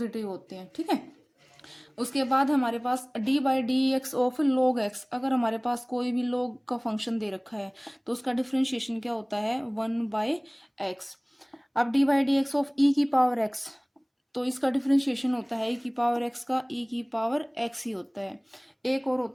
होते हैं। ठीक है, उसके बाद हमारे पास D by D x of log X. अगर हमारे पास कोई भी लॉग का फंक्शन दे रखा है तो उसका डिफ्रेंशिएशन क्या होता है, 1/x। अब D by D x of E की पावर एक्स, तो इसका डिफ्रेंशिएशन होता है ई की पावर एक्स का ई की पावर एक्स ही होता है। एक और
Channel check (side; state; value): both; identical; correlation 1.00